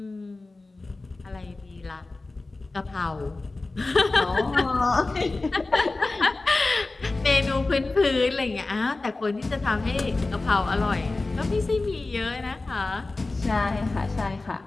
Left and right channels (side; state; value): right; quieter; 3.3 dB